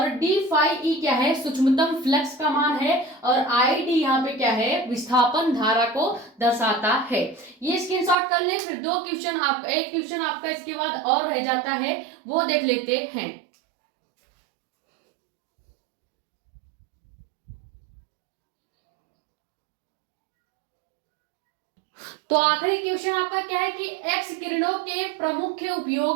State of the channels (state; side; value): drops out; left; at 8.2 s